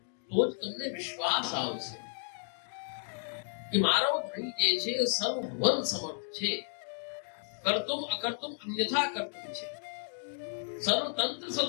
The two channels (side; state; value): right; silent; digital silence